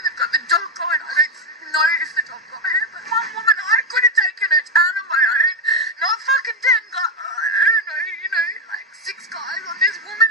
They've got the dog going. I don't know if the dog got her, but one woman, I could have taken her down on my own. Not fucking 10 guys, I don't know, like 6 guys on this woman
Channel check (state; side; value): normal; both; correlation 0.05